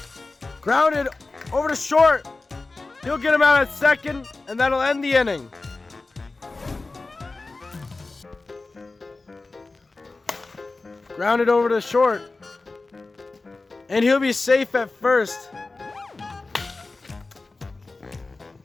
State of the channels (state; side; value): quieter; right; 3.5 dB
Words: Grounded over to short. He'll get him out at second, and that'll end the inning. Grounded over to short. And he'll be safe at first.